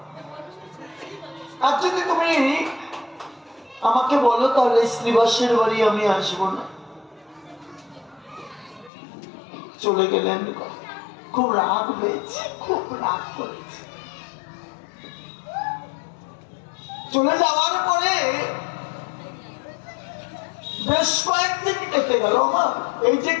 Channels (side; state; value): right; drops out; at 8.9 s